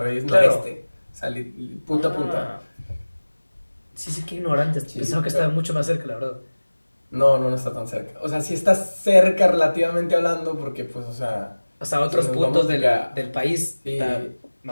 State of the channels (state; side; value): inverted; both; correlation -1.00